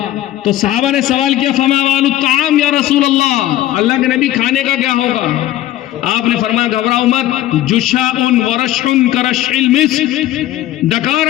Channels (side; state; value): right; quieter; 13.8 dB